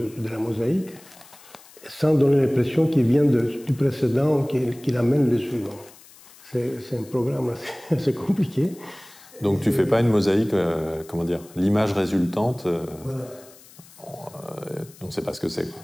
la mosaïque, sans donner l'impression qu'il vient du précédent, qu'il amène le suivant. C'est un programme assez compliqué. Donc tu ne fais pas une mosaïque, comment dire, l'image résultante, voilà. On ne sait pas ce que c'est.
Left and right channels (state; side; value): noise; left; hiss, 23 dB below the sound